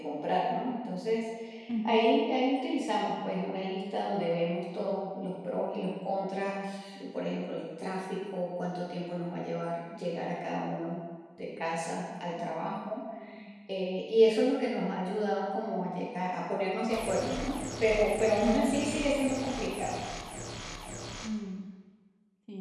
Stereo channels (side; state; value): both; identical; correlation 1.00